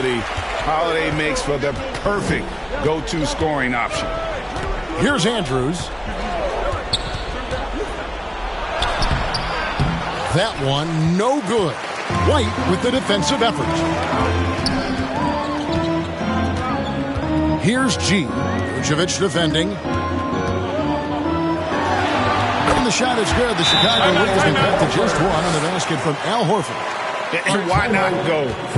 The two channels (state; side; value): identical; both; correlation 1.00